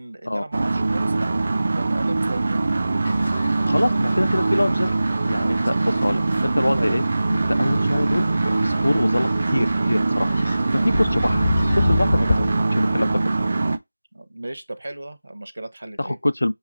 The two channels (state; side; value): inverted; both; correlation -0.96